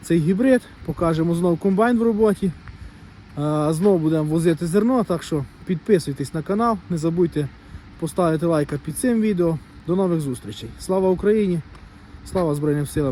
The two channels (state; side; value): identical; both; correlation 1.00